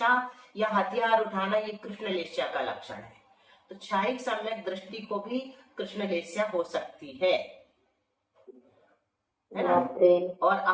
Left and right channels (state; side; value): identical; both; correlation 1.00